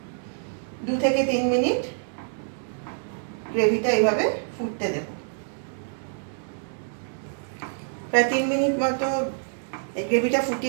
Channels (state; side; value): silent; left; digital silence